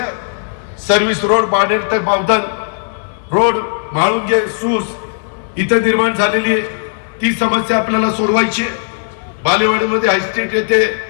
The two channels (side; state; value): right; silent; digital silence